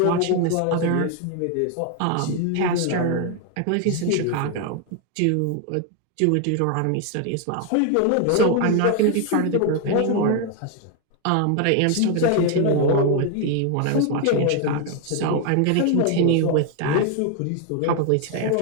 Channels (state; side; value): different; both; correlation 0.01